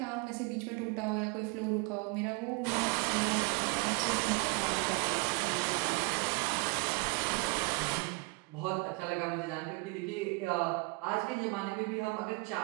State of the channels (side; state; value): left; quieter; 29.1 dB